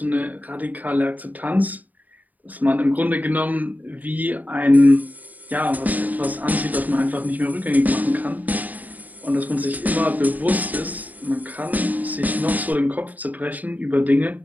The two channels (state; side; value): late; left; 0.080 ms